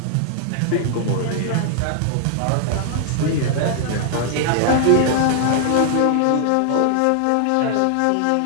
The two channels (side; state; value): both; different; correlation 0.00